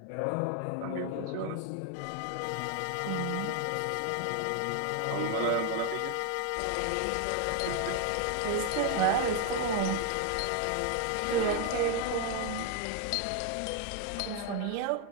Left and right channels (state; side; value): different; both; correlation 0.01